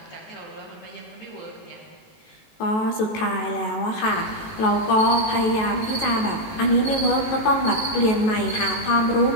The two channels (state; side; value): late; right; 19 ms